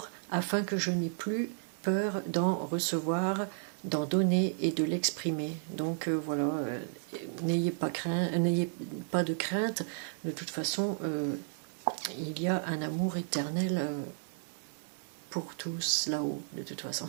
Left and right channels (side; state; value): left; silent; digital silence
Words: afin que je n'ai plus peur d'en recevoir, d'en donner et de l'exprimer. » Donc voilà, n'ayez pas de crainte, de toute façon il y a un amour éternel pour tous là-haut, de toute façon.